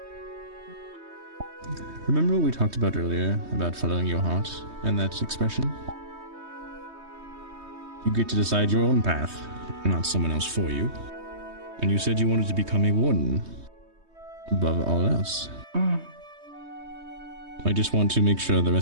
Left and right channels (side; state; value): left; late; 3.2 ms